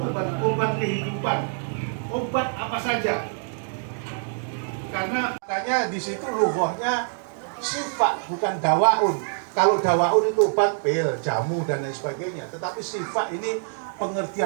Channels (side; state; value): left; silent; 62 dB below the other